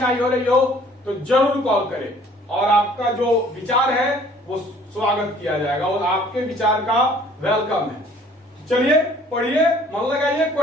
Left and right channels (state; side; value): normal; both; correlation 0.55